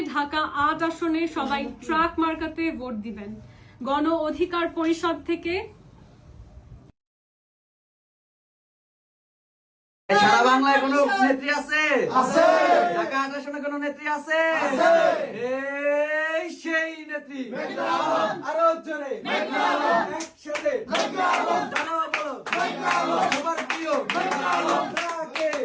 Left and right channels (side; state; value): both; identical; correlation 1.00